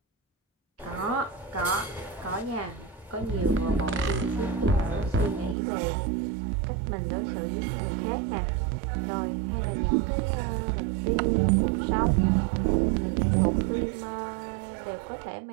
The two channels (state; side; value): drops out; left; at 5.6 s